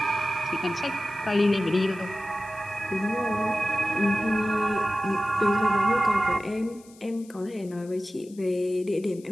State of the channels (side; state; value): left; noise; hiss, 25 dB below the sound